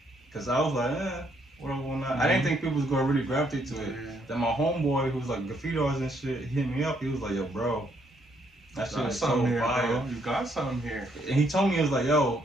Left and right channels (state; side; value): normal; both; correlation 0.71